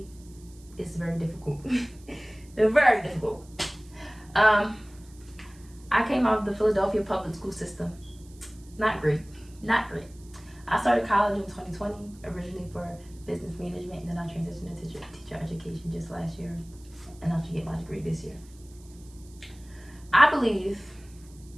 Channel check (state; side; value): noise; right; hiss, 26 dB below the sound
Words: It's very difficult. It's very difficult. I came out of the Philadelphia public school system. Not great. I started college in 2020, originally for business management, and then I transitioned into teacher education just last year, and I should get my degree this year. I believe